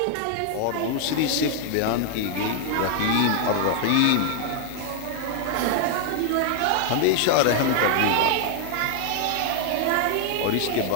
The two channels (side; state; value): both; different; correlation 0.00